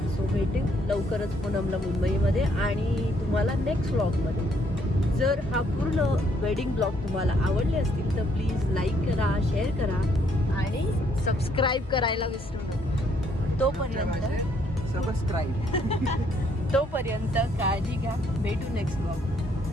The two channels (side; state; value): both; normal; correlation 0.69